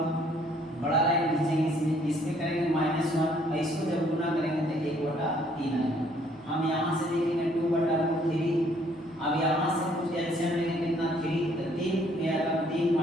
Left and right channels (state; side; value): normal; both; correlation 0.63